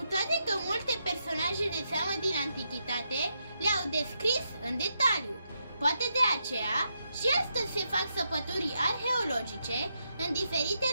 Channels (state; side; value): inverted; both; correlation -0.81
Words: toate că multe personaje de seamă din antichitate le-au descris în detaliu. Poate de aceea și astăzi se fac săpături arheologice în diferite